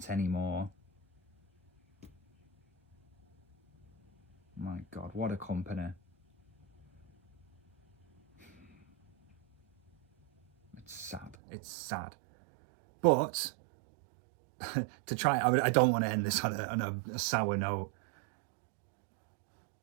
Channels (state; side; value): drops out; left; at 11.4 s